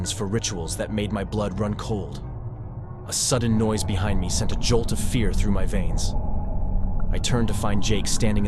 for rituals that made my blood run cold. A sudden noise behind me sent a jolt of fear through my veins. I turned to find Jake standing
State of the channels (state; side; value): identical; both; correlation 1.00